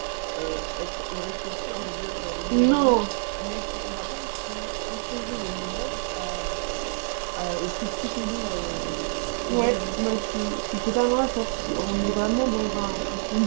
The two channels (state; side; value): silent; left; 56 dB below the other